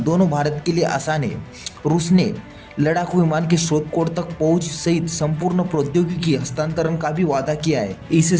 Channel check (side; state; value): both; identical; correlation 1.00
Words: दोनों भारत के लिए आसान है। रूस ने लड़ाकू विमान के स्रोत कोड तक पहुंच सहित संपूर्ण प्रौद्योगिकी हस्तांतरण का भी वादा किया है।